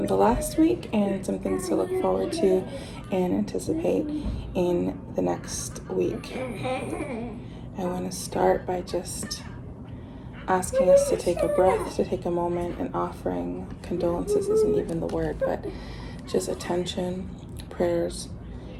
the last week, and some things to look forward to and anticipate in the next week. I want to start by just asking us to take a breath, to take a moment, and offering condolences isn't even the word, but just attention, prayers,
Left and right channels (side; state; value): both; identical; correlation 1.00